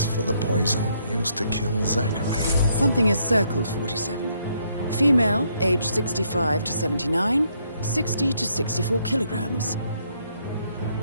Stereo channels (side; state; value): both; inverted; correlation -0.72